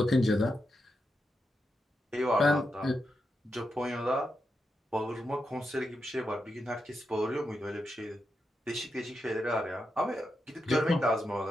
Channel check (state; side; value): normal; both; correlation 0.86